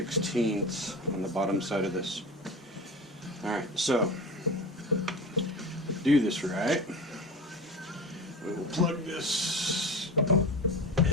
on the bottom side of this. Alright, so do this right. We will plug this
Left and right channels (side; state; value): both; normal; correlation 0.29